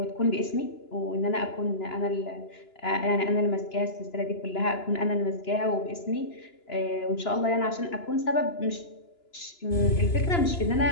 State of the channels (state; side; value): late; right; 2.9 ms